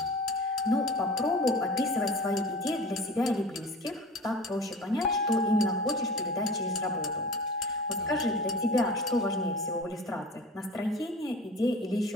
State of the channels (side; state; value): both; normal; correlation 0.38